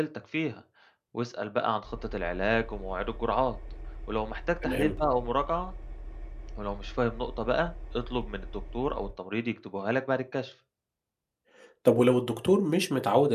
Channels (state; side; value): identical; both; correlation 1.00